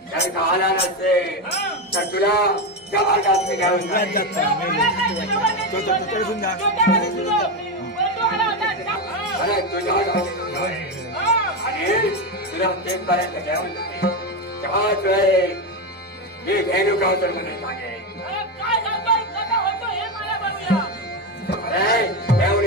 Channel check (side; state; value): both; normal; correlation 0.13